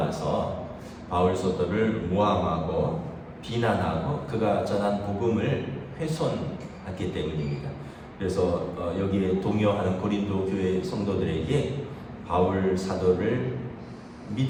바울 사도를 모함하고 비난하고 그가 전한 복음을 훼손했기 때문입니다. 그래서 여기에 동요하는 고린도 교회 성도들에게 바울 사도를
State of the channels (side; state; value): both; identical; correlation 1.00